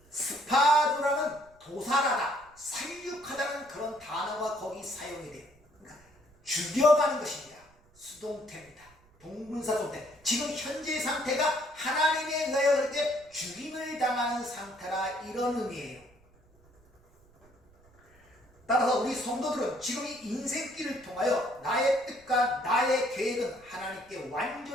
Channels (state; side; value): noise; right; rumble, 30 dB below the sound